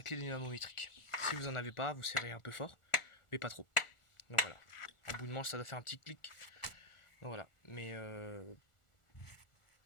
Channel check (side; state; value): right; late; 1.4 ms